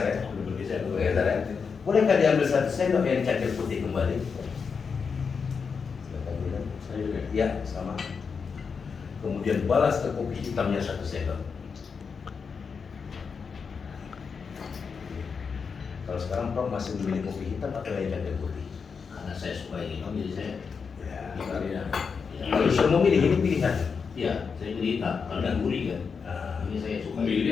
ya. Udah bergeser. Bergeser ya. Bolehkah diambil 1 sendok yang cangkir putih kembali? Silakan minum. Saya juga. Ya, sama. Kemudian balas ke kopi hitamnya 1 sendok. Kalau sekarang Prof masih memilih kopi hitam atau yang cangkir putih? Karena saya suka yang hitam, jadi saya Ya. Iya. Kalau sudah memilih ini pilihan. iya, saya pilih hitam. Kalau yang gurih kan, Nah, ini saya suka. Memilih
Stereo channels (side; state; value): right; quieter; 5.7 dB